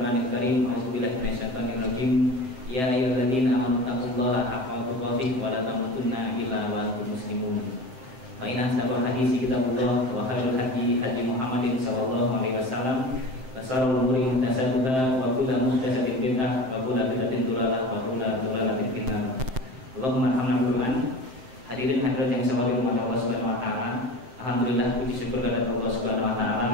Karim, a'udzu billahi minasyaitonir rajim. Ya ayyuhalladzina amanu taqullaha haqqa tuqatih wa la tamutunna illa wa antum muslimun. Fa inna asdaqal hadits kitabullah wa khairul hadi hadi Muhammadin sallallahu alaihi wasallam wa sharrul umuri muhdatsatuha wa kullu muhdatsatin bid'ah wa kullu bid'atin dhalalah wa kullu dhalalatin finnar. Allahumma arhamna bil Qur'an. Hadirin hadirat yang saya hormati Allah Subhanahu wa taala. Alhamdulillah puji syukur kepada Allah Subhanahu wa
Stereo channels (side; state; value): left; late; 7.7 ms